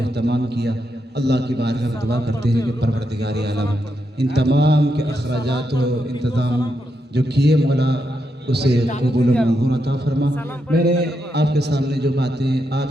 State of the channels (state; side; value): normal; both; correlation 0.83